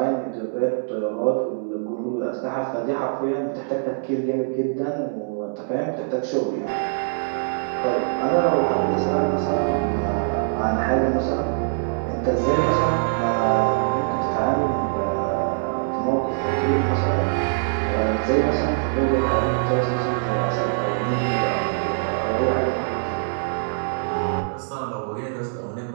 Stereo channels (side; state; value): left; silent; 63 dB below the other